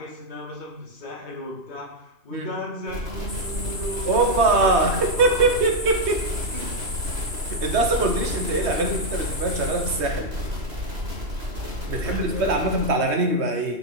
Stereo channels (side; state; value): left; late; 3.2 ms